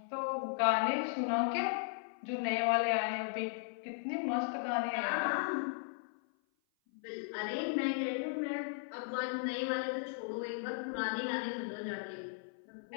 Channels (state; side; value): silent; right; 53 dB below the other